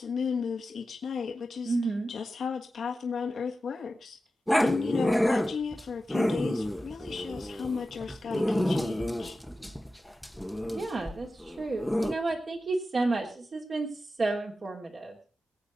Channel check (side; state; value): both; normal; correlation 0.92